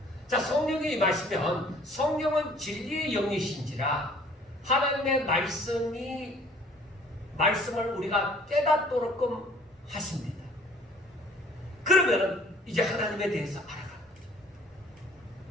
자, 성령이 임하시면 성령은 진리의 영이신지라 하나님의 말씀을 우리가 깨닫도록끔 하십니다. 그러면은 이제 하나님에 대해서 알아가는 거죠.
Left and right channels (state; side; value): normal; both; correlation 0.55